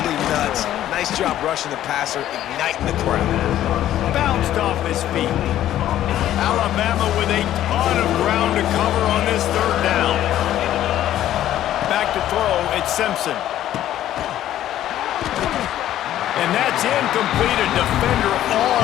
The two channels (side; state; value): right; quieter; 12.5 dB